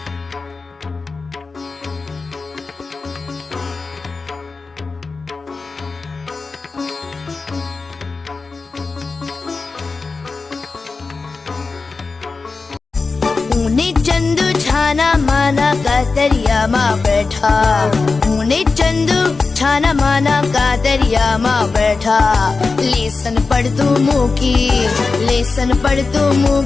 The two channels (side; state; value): right; quieter; 4.2 dB